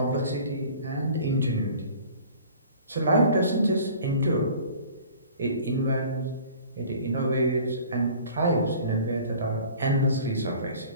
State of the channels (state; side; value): inverted; both; correlation -0.47